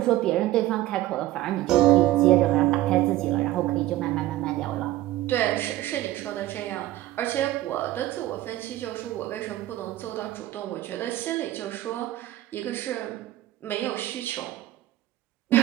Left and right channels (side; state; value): left; quieter; 15.3 dB